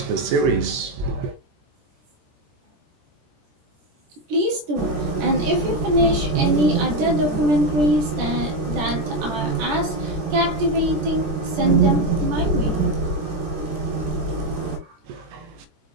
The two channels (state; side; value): late; left; 13 ms